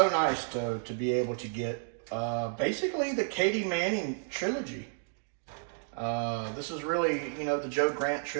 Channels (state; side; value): silent; left; digital silence